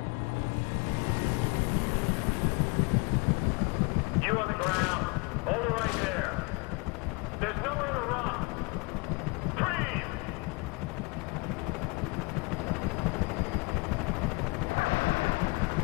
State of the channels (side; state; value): right; quieter; 28.4 dB